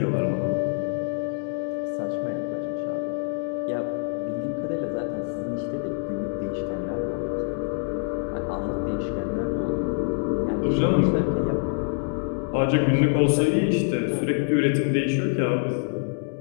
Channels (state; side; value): silent; right; digital silence